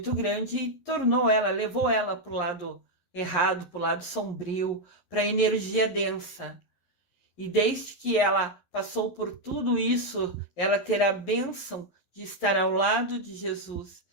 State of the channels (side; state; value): right; late; 11 ms